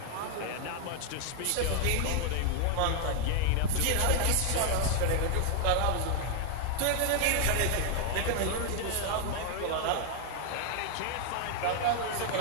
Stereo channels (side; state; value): both; different; correlation 0.00